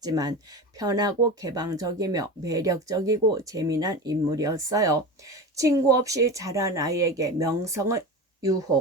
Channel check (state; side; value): normal; both; correlation 0.28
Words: 편하고 개방적이며 매력적이고 재미난 인물이었어요. 친구 없이 자란 아이에게 명성은